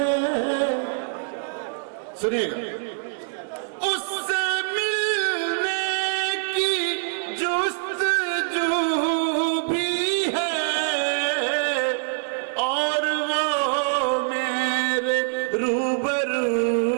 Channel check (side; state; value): left; silent; digital silence